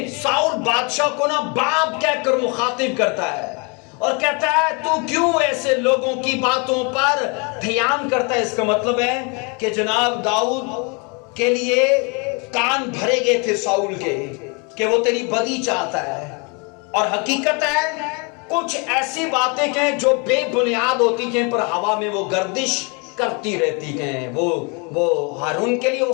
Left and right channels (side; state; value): right; quieter; 32.5 dB